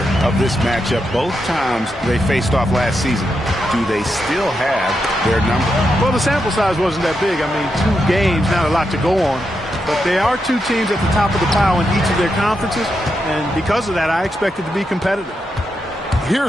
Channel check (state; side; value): normal; both; correlation 0.84